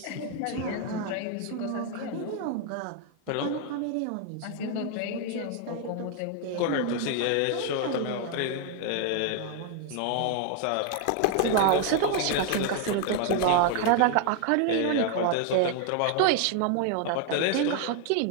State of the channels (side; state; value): both; different; correlation 0.00